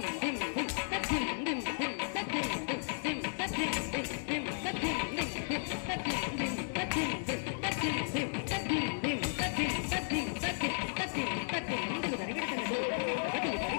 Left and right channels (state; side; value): silent; right; digital silence